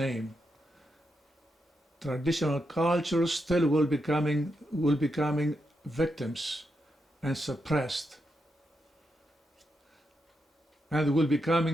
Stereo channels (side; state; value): both; normal; correlation 0.84